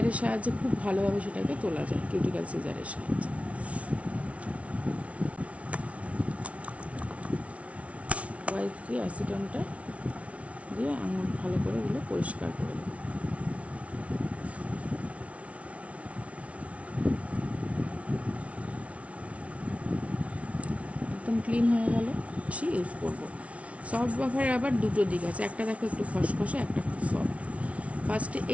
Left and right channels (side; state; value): left; late; 0.064 ms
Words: সাহায্যে খুব ভালোভাবে সেটাকে তোলা যায়, কিউটিক্যাল সিজারের সাহায্যে। হোয়াইট দিয়ে অ্যাসিটনটা দিয়ে আঙুল ভালো করে ওগুলো পরিষ্কার করে দেবো। একদম ক্লিন হয়ে গেল। ইউজ করবো সফট বাফারের আবার দুটো দিক আছে, একটা দেখো একটু খসখসে, একটা খুব সফট। ফার্স্টে